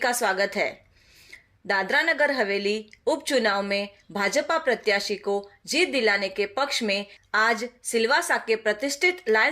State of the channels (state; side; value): identical; both; correlation 1.00